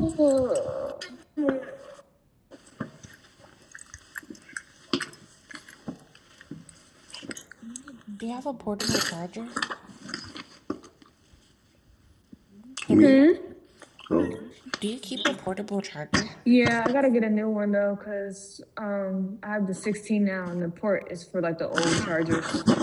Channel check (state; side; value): identical; both; correlation 1.00